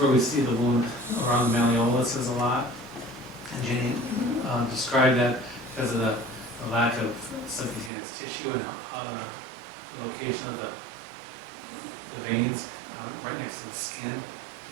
we see the wound around the malleoluses a lot. And Jenny described that because of the lack of subcutaneous tissue and how the location of the veins right next to the skin,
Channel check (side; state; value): left; drops out; at 7.9 s